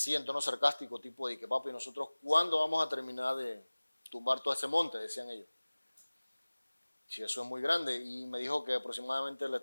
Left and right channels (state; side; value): inverted; both; correlation -1.00